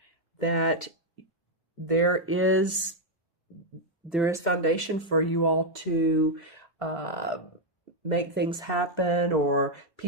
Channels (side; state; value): both; normal; correlation 0.00